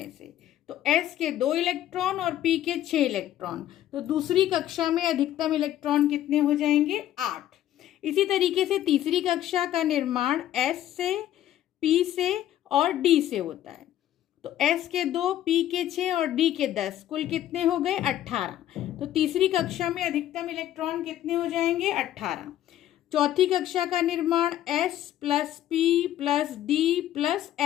से। तो S के 2 इलेक्ट्रॉन और P के 6 इलेक्ट्रॉन, तो दूसरी कक्षा में अधिकतम इलेक्ट्रॉन कितने हो जाएंगे? 8। इसी तरीके से तीसरी कक्षा का निर्माण S से, P से और D से होता है। तो S के 2, P के 6 और D के 10, कुल कितने हो गए? 18। तो तीसरी कक्षा में अधिकतम इलेक्ट्रॉन कितने हो जाएंगे? 18। चौथी कक्षा का निर्माण S plus P plus D plus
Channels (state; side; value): quieter; right; 12.4 dB